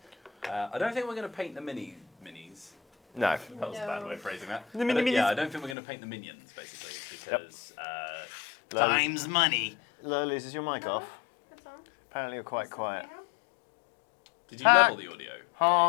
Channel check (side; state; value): right; drops out; at 5.8 s